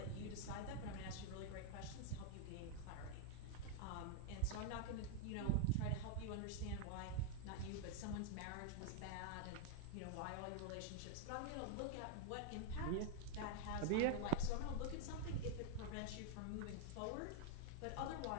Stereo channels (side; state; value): both; different; correlation 0.00